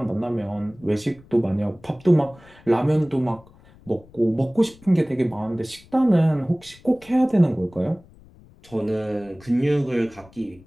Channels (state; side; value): noise; left; rumble, 25 dB below the sound